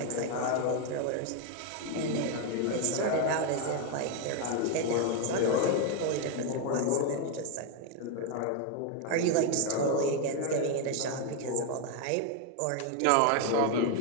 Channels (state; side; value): different; both; correlation 0.01